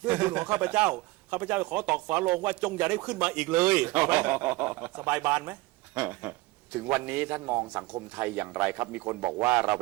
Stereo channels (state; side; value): quieter; left; 21.2 dB